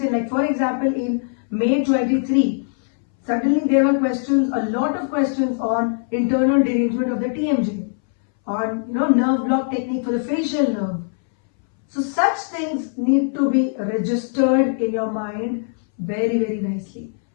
like for example in May 23, suddenly there were questions, a lot of questions on internal derangement of the TMJ, on nerve block technique for the facial nerve. So such things need to be registered in your mind very, very nicely.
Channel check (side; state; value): right; silent; 62 dB below the other